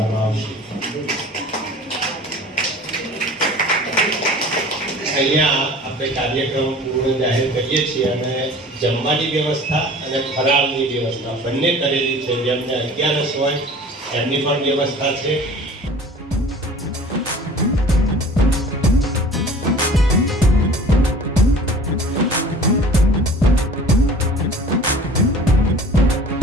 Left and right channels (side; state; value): both; normal; correlation 0.44